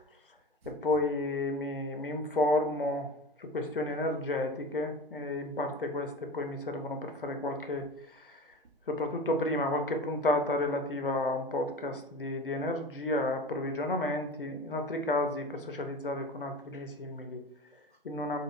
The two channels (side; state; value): both; normal; correlation 0.32